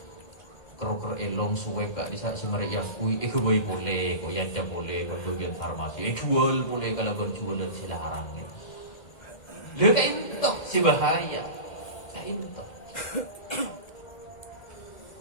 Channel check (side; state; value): right; late; 2.1 ms